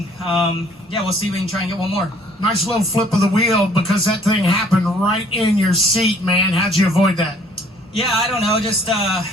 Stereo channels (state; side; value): normal; both; correlation 0.58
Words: we'll see if we can try and get one more. Nice little flip of the wheel because that thing happened right in your seat, man. How'd you avoid that? Yeah, I don't know. Just